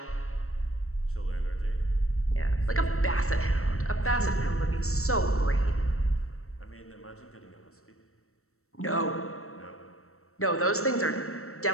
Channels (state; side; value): late; right; 0.63 ms